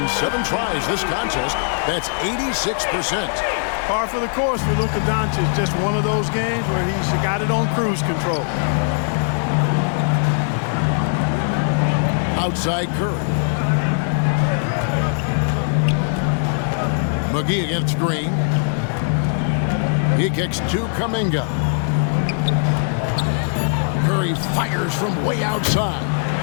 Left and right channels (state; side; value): silent; right; 66 dB below the other